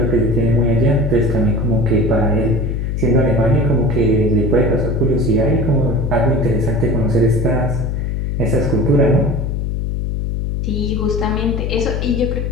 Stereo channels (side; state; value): left; noise; hum, 1 dB below the sound